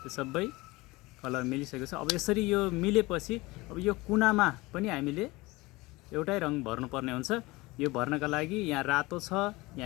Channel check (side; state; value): right; quieter; 21.9 dB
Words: सबै कलर मिलिसकेको छ। अब यसरी यो मिलेपछि अब यो कुनामा पनि हामीले एउटै रङ भर्नुपर्ने हुन्छ। यो भर्नका लागि यहाँ रातो छ,